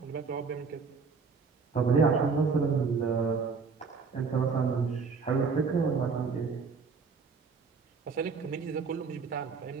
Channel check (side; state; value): left; quieter; 5.1 dB